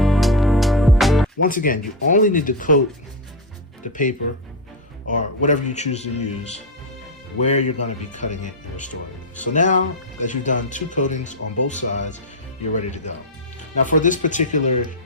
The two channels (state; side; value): normal; both; correlation 0.07